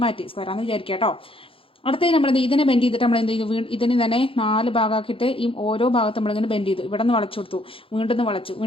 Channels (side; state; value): right; late; 0.26 ms